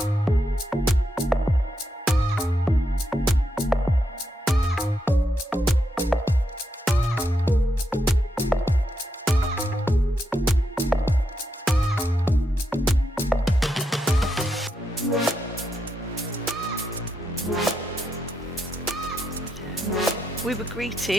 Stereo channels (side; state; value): both; normal; correlation 0.82